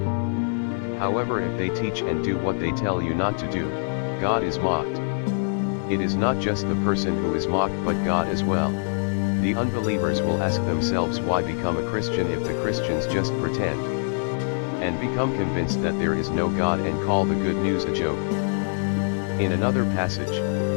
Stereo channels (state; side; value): silent; right; digital silence